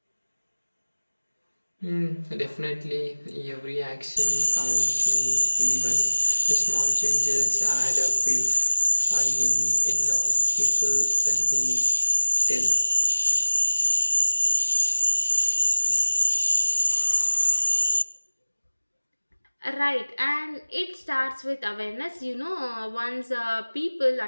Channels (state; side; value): inverted; both; correlation -1.00